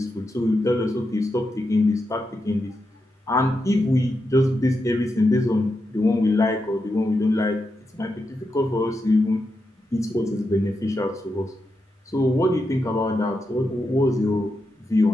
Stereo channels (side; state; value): both; normal; correlation 0.86